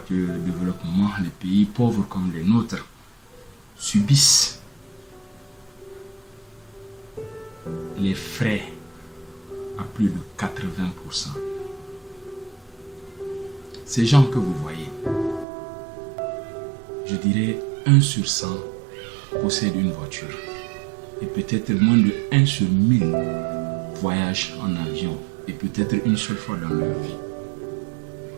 de développement, les pays pauvres comme les nôtres, subissent les frais à plus de 80%. Ces gens que vous voyez, je dirais 1 sur 100 possèdent une voiture. Et peut-être moins de 1 sur 1000 voyagent en avion. Et peut-être une seule fois dans leur vie.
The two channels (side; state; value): left; drops out; at 15.5 s